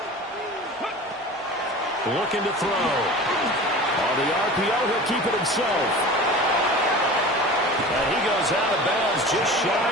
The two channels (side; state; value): both; normal; correlation 0.36